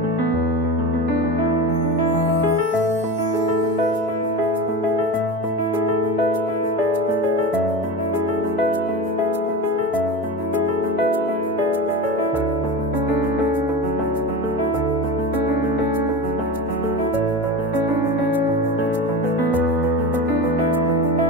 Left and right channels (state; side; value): normal; both; correlation 0.26